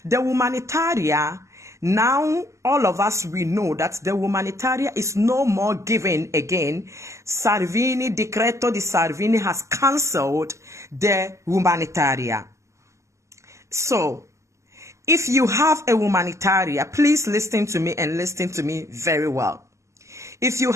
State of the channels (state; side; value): late; left; 0.14 ms